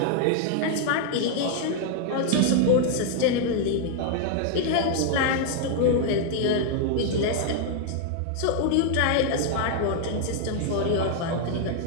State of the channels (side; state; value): both; different; correlation 0.00